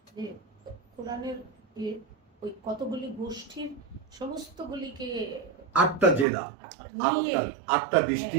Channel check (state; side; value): drops out; left; at 6.2 s